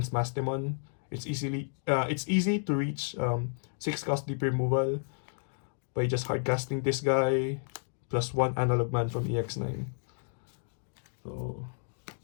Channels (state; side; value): silent; right; digital silence